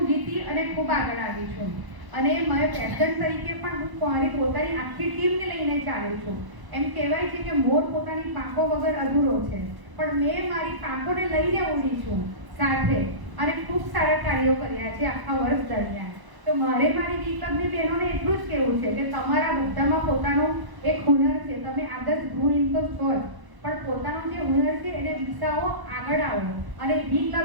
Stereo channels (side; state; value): left; late; 1.0 ms